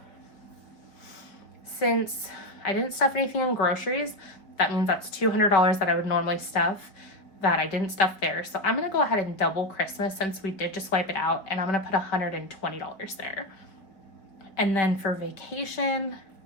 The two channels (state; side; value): late; right; 5.2 ms